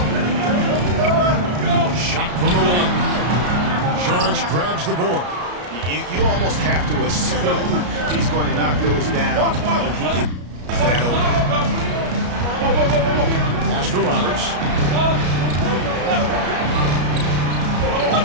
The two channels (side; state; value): left; late; 33 ms